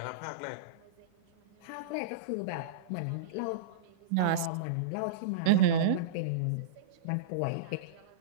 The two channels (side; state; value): both; different; correlation -0.05